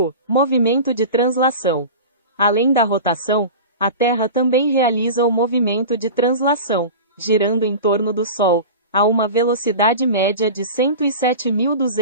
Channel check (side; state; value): both; inverted; correlation -0.32